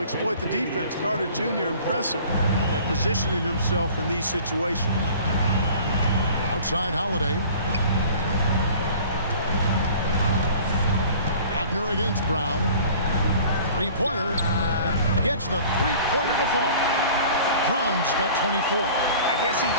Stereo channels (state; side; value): inverted; both; correlation -0.46